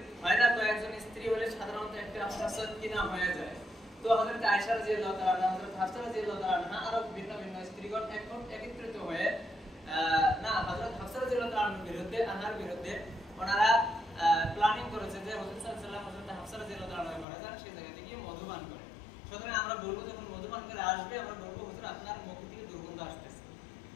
হয় না, কয়েকজন স্ত্রী হলে সাধারণত একটা ফাসাদ কিনা হয়ে যায়। তো হযরত আয়েশা রাদিয়াল্লাহু তাআলা, হযরত হাফসা রাদিয়াল্লাহু তাআলা আরো ভিন্ন ভিন্ন স্ত্রীগণ একত্রিত হয়ে না হযরত হাফসা রাদিয়াল্লাহু তাআলার বিরুদ্ধে, আনহার বিরুদ্ধে ওনারা প্ল্যানিং করেছে যে রাসূল সাল্লাল্লাহু আলাইহি ওয়াসাল্লাম হযরত হাফসা রাদিয়াল্লাহু তাআলা ঘরে যান, সেই জায়গা থেকে মধুপান করে। সুতরাং আমরা বলবো যখন মধুপান করে আসবে, আমরা বলবো হুজুর আপনার মুখ থেকে দুর্গন্ধ আসতেছে।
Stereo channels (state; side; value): drops out; right; at 17.2 s